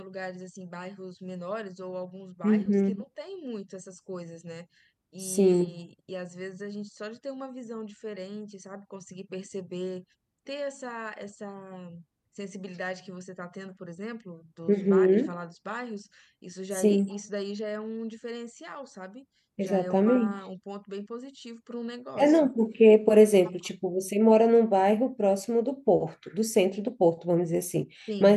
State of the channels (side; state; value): both; identical; correlation 1.00